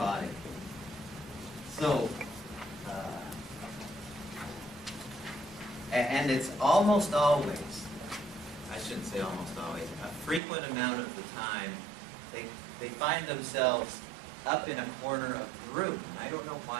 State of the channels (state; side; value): drops out; left; at 10.4 s